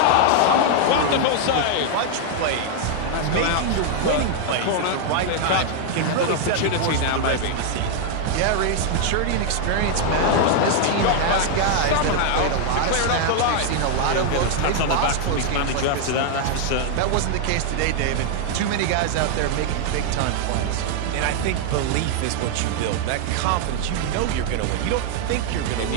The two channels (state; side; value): different; both; correlation 0.00